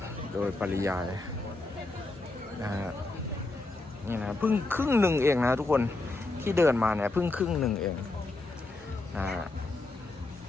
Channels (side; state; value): right; quieter; 3.0 dB